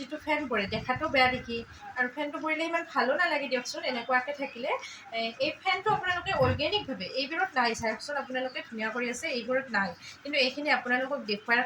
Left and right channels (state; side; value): identical; both; correlation 1.00